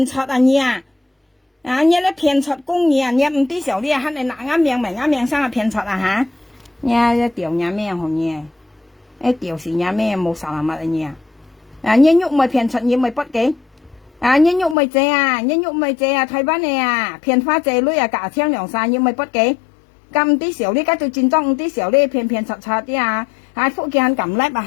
出啊你啊！啊！你咧騙出公嘢，你唔啲時候你啊，肯定拿啱命咪啱命生啊騙出啊嚇！你一條嘢咩紅嘢？一條是嘢咩冇啥物嘅嘢啊！啊！你喐咪騙出，你咪不嘅？啊！你喐咪借啊！你喐咪借啊！台灣嘅啊，騙花借女啊，價錢兩三，你咪不嘅？咁啲時候你家做戰裝，啲時候你騙出啲啊！啊！福建肯撳叻啊，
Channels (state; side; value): drops out; right; at 14.8 s